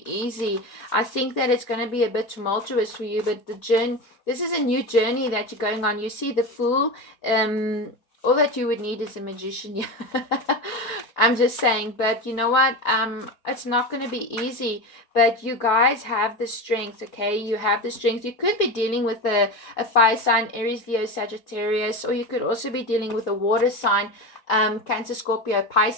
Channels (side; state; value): right; late; 4.4 ms